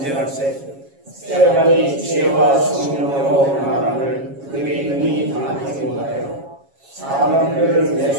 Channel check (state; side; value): late; left; 7.3 ms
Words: 스데반이 지혜와 성령으로 말함을 그들이 능히 당하지 못하여 사람들을